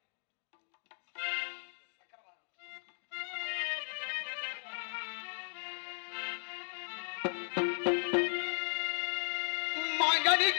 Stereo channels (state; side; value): silent; right; 54 dB below the other